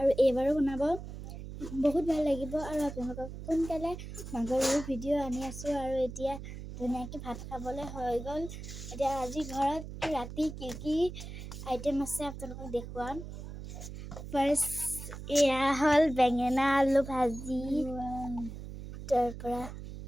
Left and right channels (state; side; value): noise; right; hum, 10 dB below the sound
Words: এইবাৰো বনাব। বহুত ভাল লাগিব আৰু আপোনালোকক সোনকালে মাঘৰ বিহুৰ ভিডিঅ' আনি আছোঁ আৰু এতিয়া ধুনীয়াকৈ ভাত খাবলৈ হৈ গ'ল। এতিয়া আজি ঘৰত ৰাতি কি আইটেম আছে আপোনালোকক দেখুৱাম। ফাৰ্ষ্ট এয়া হ'ল বেঙেনা আলু ভাজি, তাৰপৰা